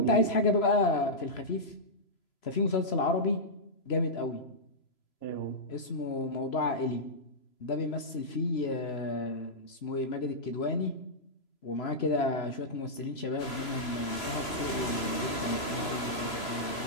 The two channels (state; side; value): late; right; 3.0 ms